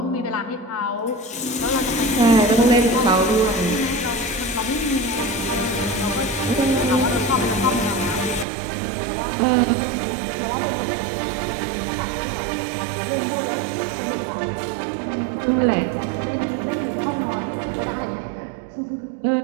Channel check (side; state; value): left; drops out; at 8.5 s